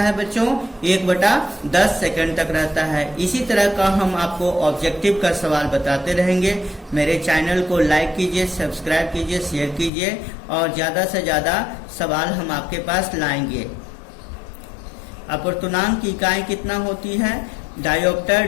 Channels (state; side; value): drops out; right; at 9.9 s